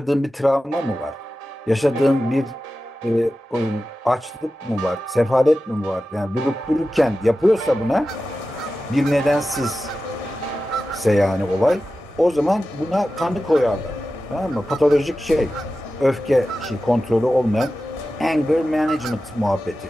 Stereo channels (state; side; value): normal; both; correlation 0.93